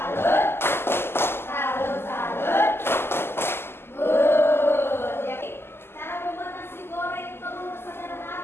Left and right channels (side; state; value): right; late; 0.12 ms